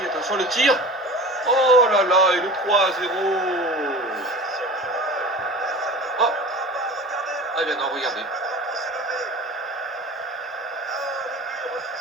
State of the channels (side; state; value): both; normal; correlation 0.36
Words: Attention, le tir. Oh là là, et le 3-0. Oh. Ah bien non, regardez.